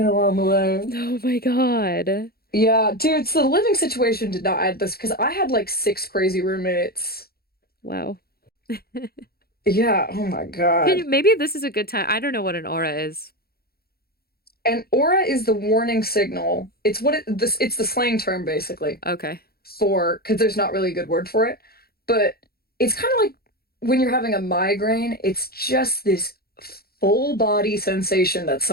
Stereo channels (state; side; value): late; right; 0.45 ms